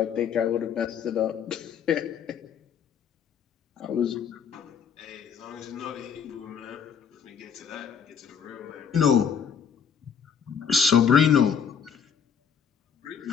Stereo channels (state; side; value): quieter; right; 7.2 dB